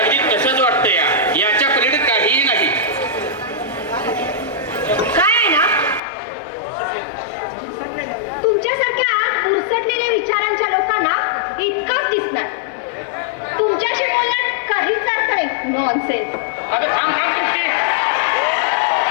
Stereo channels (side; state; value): right; drops out; at 6.0 s